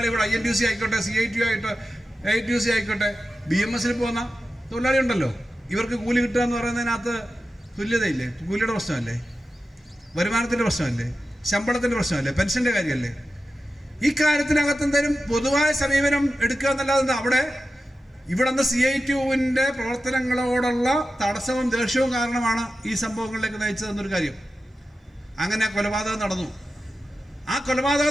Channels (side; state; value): both; normal; correlation 0.93